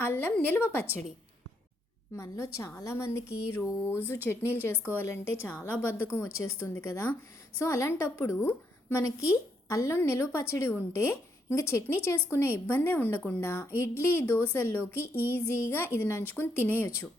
అల్లం నిల్వ పచ్చడి. మనలో చాలామందికి రోజు చట్నీలు చేసుకోవాలంటే చాలా బద్ధకం వచ్చేస్తుంది కదా. సో అలాంటప్పుడు మనకి అల్లం నిల్వ పచ్చడి ఉంటే ఇంకా చట్నీ చేసుకునే ఇబ్బందే ఉండకుండా ఇడ్లీ దోశల్లోకి ఈజీగా ఇది నంచుకుని తినేయొచ్చు.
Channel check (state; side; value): normal; both; correlation 0.76